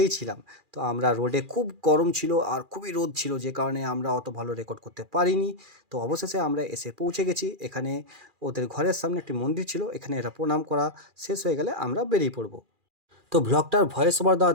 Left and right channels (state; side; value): late; left; 2.4 ms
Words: ছিলাম। তো আমরা রোডে খুব গরম ছিল আর খুবই রোদ ছিল, যে কারণে আমরা অত ভালো রেকর্ড করতে পারিনি। তো অবশেষে আমরা এসে পৌঁছে গেছি এখানে। ওদের ঘরের সামনে একটি মন্দির ছিল, এখানে এরা প্রণাম করা শেষ হয়ে গেলে আমরা বেরিয়ে পড়বো। তো ব্লগটার ভয়েস ওভার